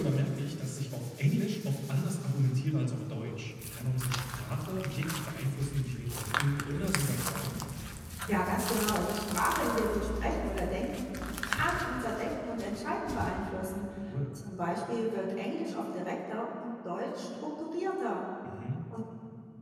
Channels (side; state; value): both; identical; correlation 1.00